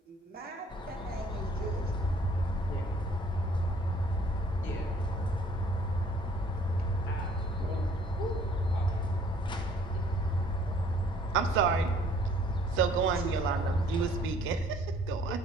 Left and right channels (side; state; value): both; normal; correlation 0.58